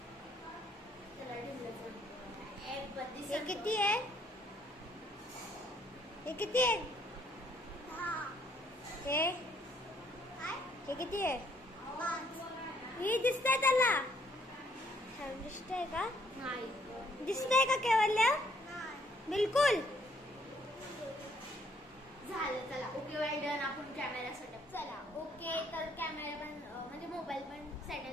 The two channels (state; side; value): normal; both; correlation 0.66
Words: हे किती आहे? हे किती आहे? हे किती आहे? हे दिसतंय त्याला? दिसतंय का? नाही. दिसतंय का केवल्या? बिलकुल. झालं. चला ओके वेल डन. आपण कॅमेरा सेटअप. चला ओके. तर कॅमेरा पण म्हणजे मोबाईल पण